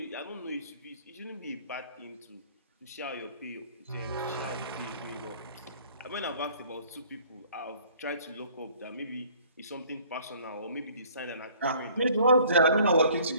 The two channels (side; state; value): both; inverted; correlation -0.55